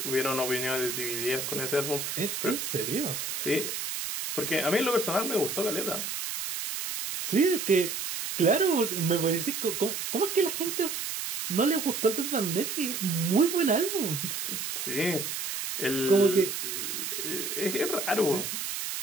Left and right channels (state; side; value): noise; right; hiss, 4 dB below the sound